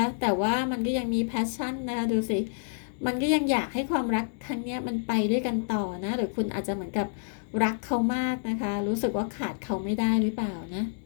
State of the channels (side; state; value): right; silent; digital silence